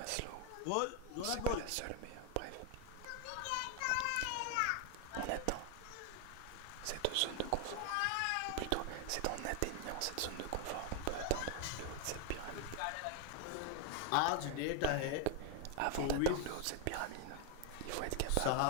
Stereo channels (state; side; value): different; both; correlation 0.00